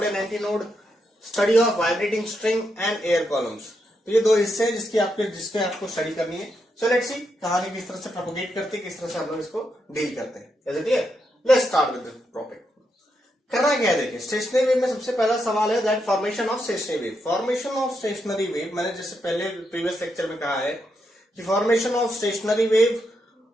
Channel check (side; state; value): both; normal; correlation 0.82